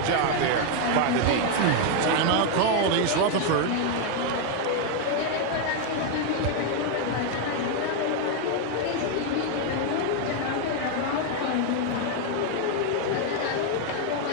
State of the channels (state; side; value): different; both; correlation 0.01